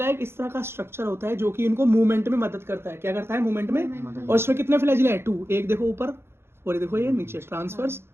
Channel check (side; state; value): left; late; 0.12 ms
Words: एक इस तरह का स्ट्रक्चर होता है जो कि इनको मूवमेंट में मदद करता है। क्या करता है? मूवमेंट में। और इसमें कितने फ्लैजिला है? 2। एक देखो ऊपर और ये देखो ये नीचे, ट्रांसवर्स